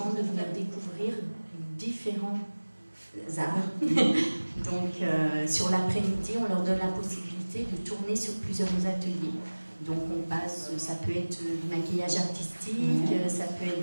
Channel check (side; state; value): both; inverted; correlation -1.00